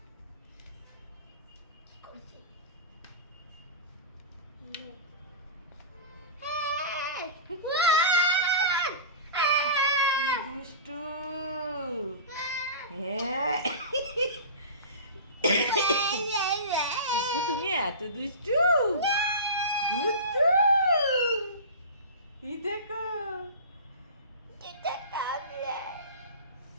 দুষ্টু হ্যাঁ টিপু তুমি এত দুষ্টু দুষ্টু এই দেখো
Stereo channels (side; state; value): both; inverted; correlation -0.32